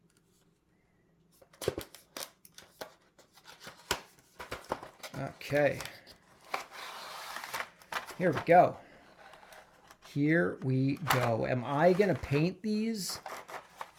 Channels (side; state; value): both; identical; correlation 1.00